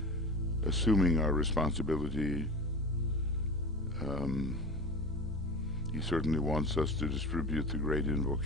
assuming our responsibility. He certainly wants us to distribute the great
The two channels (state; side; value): normal; both; correlation 0.32